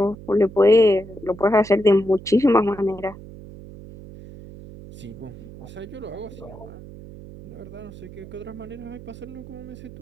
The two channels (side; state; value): right; noise; hum, 16 dB below the sound